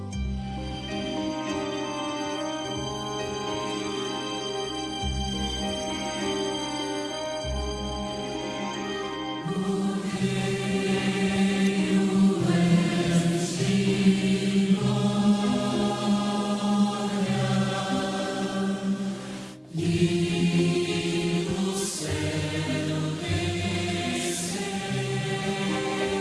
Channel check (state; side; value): identical; both; correlation 1.00